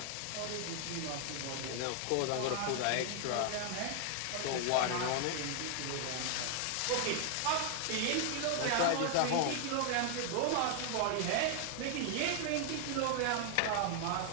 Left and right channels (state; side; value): different; both; correlation 0.00